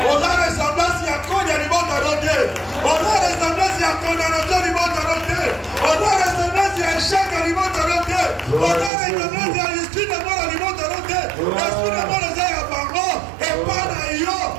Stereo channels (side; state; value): left; drops out; at 8.9 s